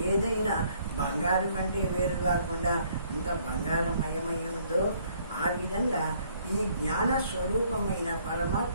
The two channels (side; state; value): both; inverted; correlation -0.64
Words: ఏదైనా బంగారు కంటే వేరు కాకుండా అంత బంగారమయమై ఉందో ఆ విధంగా ఈ జ్ఞాన స్వరూపమైన